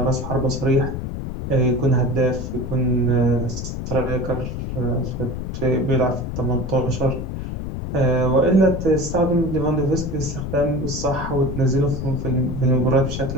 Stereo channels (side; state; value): left; noise; rumble, 5 dB below the sound